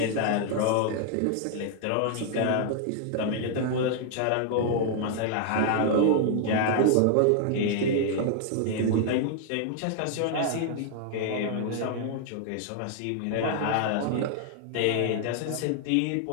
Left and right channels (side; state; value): both; different; correlation 0.00